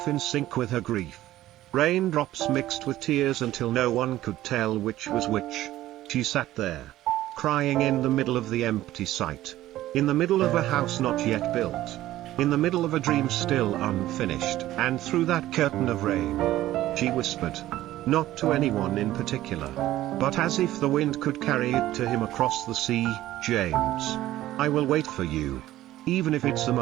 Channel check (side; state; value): left; quieter; 14.7 dB